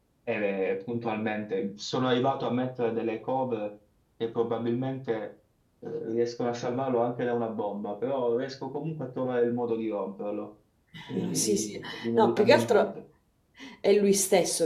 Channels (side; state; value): both; identical; correlation 1.00